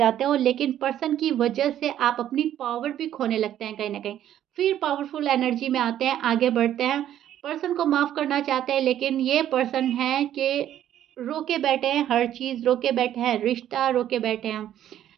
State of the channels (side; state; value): left; quieter; 11.3 dB